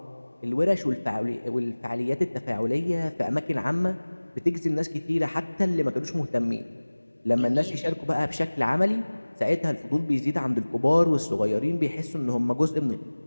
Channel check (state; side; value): inverted; both; correlation -1.00